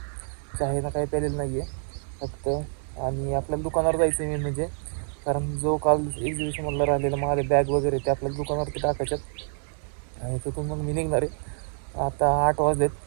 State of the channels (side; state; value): left; silent; 60 dB below the other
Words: चहानं काही प्यालेलं नाही आहे फक्त. आणि आपल्याला दुकानावर जायचं आहे मेन म्हणजे, कारण जो काल एक्झिबिशनमधला राहिलेला माझे बॅग वगैरे ते आपल्याला दुकानावरती टाकायच्यात. आणि तिथून मग मी निघणार आहे. आता 8